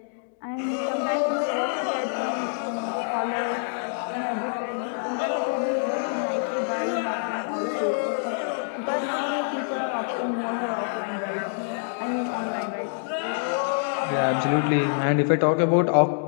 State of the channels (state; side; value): silent; right; digital silence